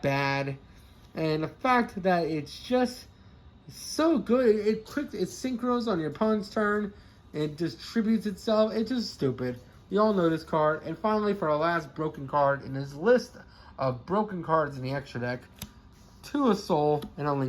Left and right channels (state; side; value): identical; both; correlation 1.00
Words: bad. And the fact that it's just so good. It synchros on your opponent's turn. It distributes itself. It's just stupid. You all know this card. And finally, for our last broken card in this list of broken cards in the extra deck, 2 a Soul and a